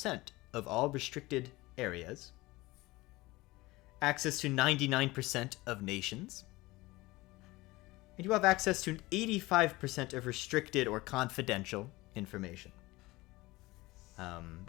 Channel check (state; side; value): quieter; right; 20.5 dB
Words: of all restricted areas, access to 99% of nations, and you have access to 85% of restricted or confidential information.